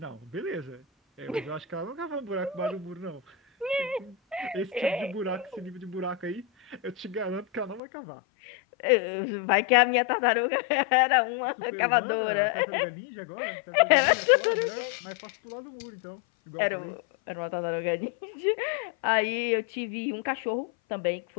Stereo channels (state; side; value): drops out; right; at 7.8 s